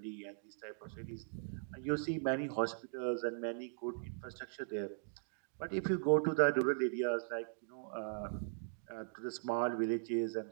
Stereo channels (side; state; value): left; silent; digital silence